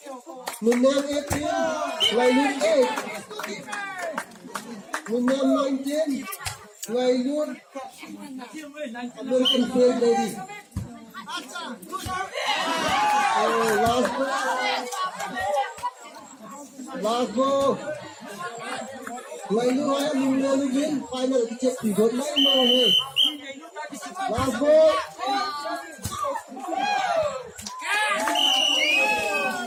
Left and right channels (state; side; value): identical; both; correlation 1.00